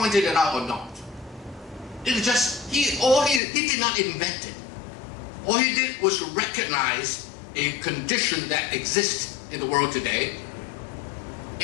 it out or not, it is just, he did not invent it. All he did was to recognize a condition that exists in the world today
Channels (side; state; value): right; drops out; at 3.4 s